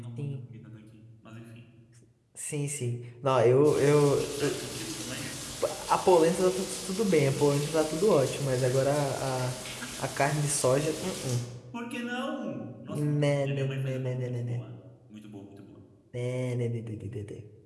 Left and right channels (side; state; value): both; identical; correlation 1.00